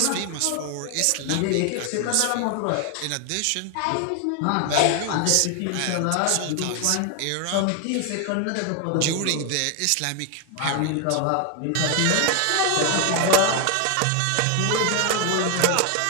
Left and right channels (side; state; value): both; different; correlation 0.00